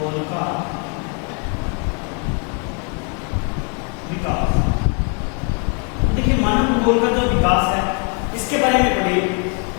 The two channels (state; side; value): quieter; right; 36.7 dB